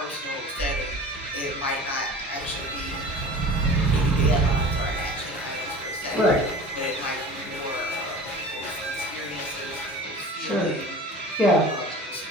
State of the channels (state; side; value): normal; both; correlation 0.39